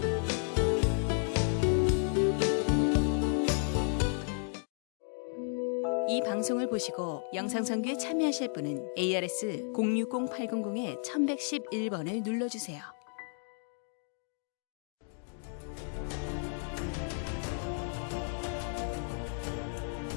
이 방송을 보시고 영상선교에 참여하실 분은 ARS 060-800-1111번을 눌러주세요.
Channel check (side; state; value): right; silent; 56 dB below the other